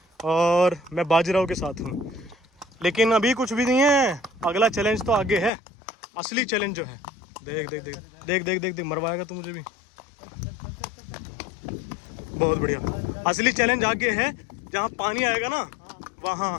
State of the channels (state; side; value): drops out; right; at 5.5 s